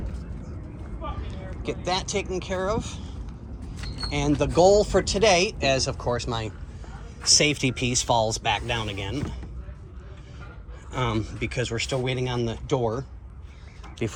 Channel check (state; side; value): identical; both; correlation 1.00